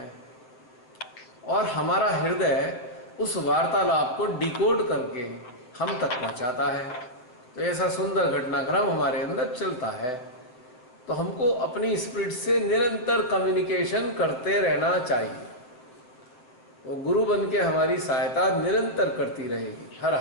और हमारा हृदय उस वार्तालाप को डिकोड करके हम तक पहुंचाता है। तो ऐसा सुंदर घटनाक्रम हमारे अंदर चलता है। तो हमको अपनी स्पिरिट से निरंतर कम्युनिकेशन करते रहना चाहिए। वो गुरु बन के हमारी सहायता निरंतर करती रहेगी, हर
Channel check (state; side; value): late; right; 7.9 ms